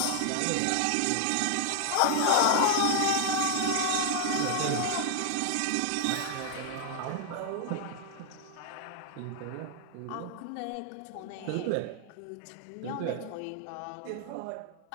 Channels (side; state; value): both; different; correlation 0.00